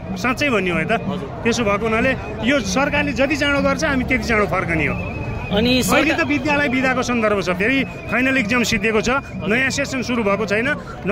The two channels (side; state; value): both; identical; correlation 1.00